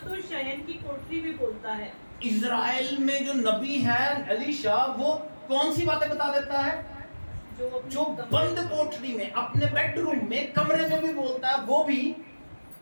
शयन की कोठरी में बोलता है। इजराइल में जो नबी है अलीशा, वो कौन सी बातें बता देता है? जो बंद कोठरी में, अपने बेडरूम में, कमरे में भी बोलता है, वो भी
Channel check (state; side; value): inverted; both; correlation -1.00